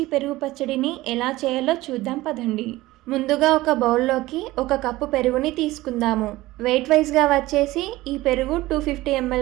పెరుగు పచ్చడిని ఎలా చేయాలో చూద్దాం పదండి. ముందుగా ఒక బౌల్లోకి 1 కప్పు పెరుగుని తీసుకుందాము. వెయిట్ వైజ్గా వచ్చేసి ఈ పెరుగు 250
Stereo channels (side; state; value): left; quieter; 18.1 dB